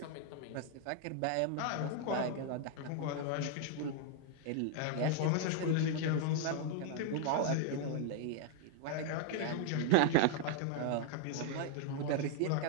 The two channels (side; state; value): both; different; correlation 0.00